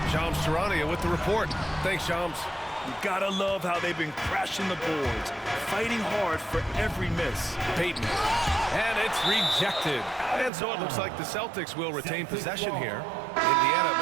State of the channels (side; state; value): left; drops out; at 10.5 s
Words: Shams Charania with the report. Thanks, Shams. You gotta love how they've been crashing the boards, fighting hard for every miss. Payton. And it's rejected. And so it looks like the Celtics will retain possession here. Indiana